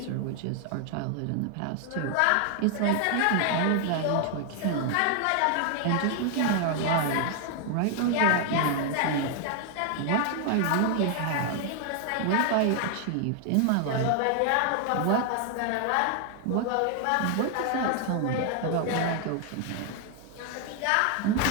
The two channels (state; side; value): different; both; correlation 0.00